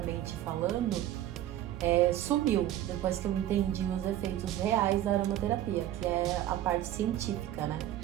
falando, sumiu depois que eu entendi os efeitos reais da aromaterapia, que é a parte científica, né?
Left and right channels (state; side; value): quieter; left; 12.7 dB